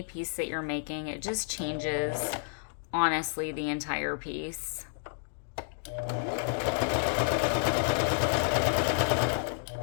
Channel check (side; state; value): right; silent; digital silence